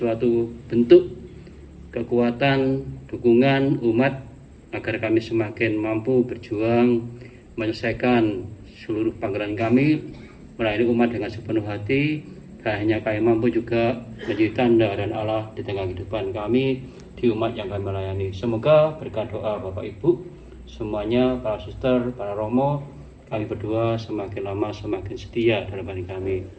bentuk kekuatan, dukungan umat agar kami semakin mampu berjuang menyelesaikan seluruh panggilan kami melayani umat dengan sepenuh hati. Hanya kami mampu juga menjadi tanda dan Allah di tengah kehidupan kami di umat yang kami melayani. Semoga berkat doa Bapak Ibu semuanya, para suster, para romo, kami berdua semakin lama semakin setia dalam hati kami.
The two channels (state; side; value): identical; both; correlation 1.00